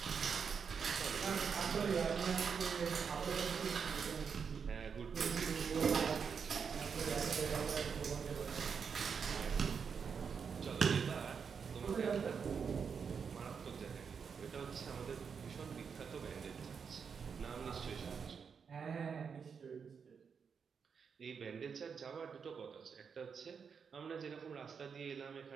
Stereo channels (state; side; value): quieter; left; 6.3 dB